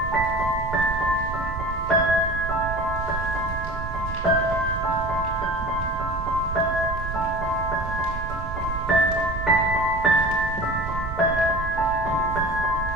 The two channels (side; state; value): right; noise; rumble, 7 dB below the sound